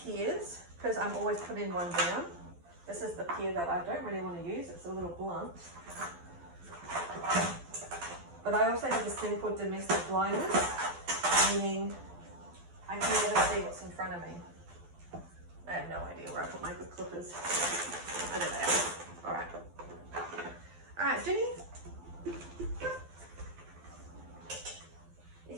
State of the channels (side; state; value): left; late; 12 ms